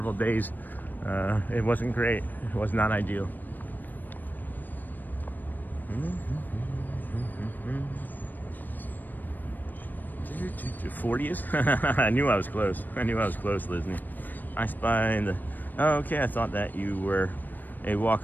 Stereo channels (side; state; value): right; late; 0.088 ms